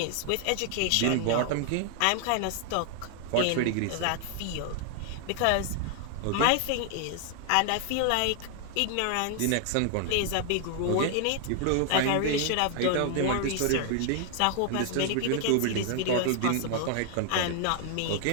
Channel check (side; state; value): both; different; correlation 0.00